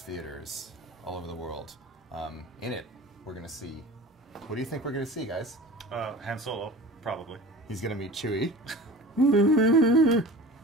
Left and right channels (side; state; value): both; normal; correlation 0.39